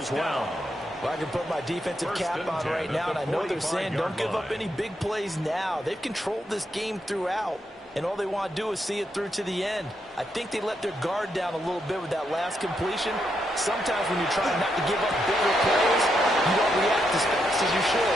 well. Well, I can put my defensive cap on right now, and I know they're saying don't give up any big plays now. They've controlled this game throughout, and all they want to do is see it through to the end. I think they let their guard down a little bit with that last completion. Sometimes when you try not to give up bigger plays, you don't react as fast as you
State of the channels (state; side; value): normal; both; correlation 0.81